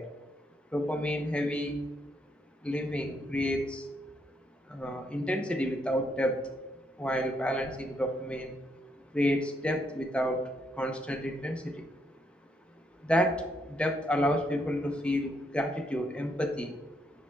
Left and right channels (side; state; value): both; normal; correlation 0.75